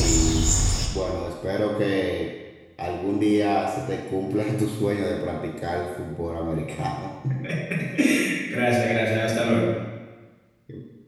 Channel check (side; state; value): both; identical; correlation 1.00